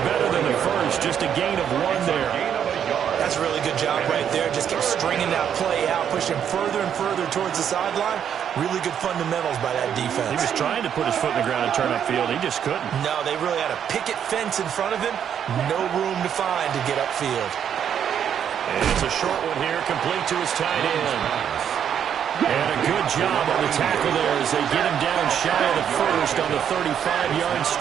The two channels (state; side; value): quieter; left; 8.8 dB